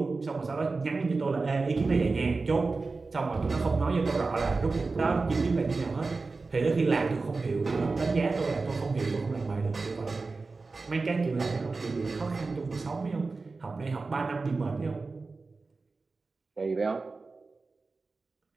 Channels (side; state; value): left; quieter; 3.9 dB